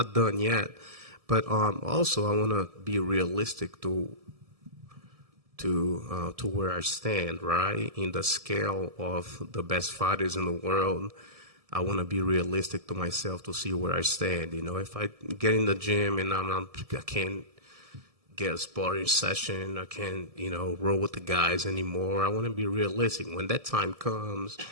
done yet, but also I want to be realistic to where I stand, right, in the scale of the best fighters in the world. I want to be realistic to myself to see where I stand. If I get in the gym and I can't get a sparring session, I can't, roll with the guys anymore. I want to be realistic. When that time comes,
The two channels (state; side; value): late; left; 1.7 ms